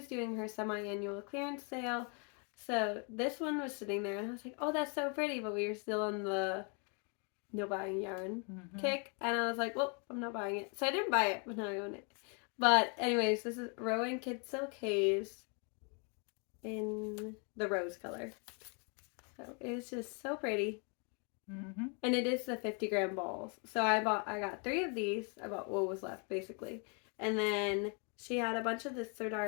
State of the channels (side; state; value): right; quieter; 37.4 dB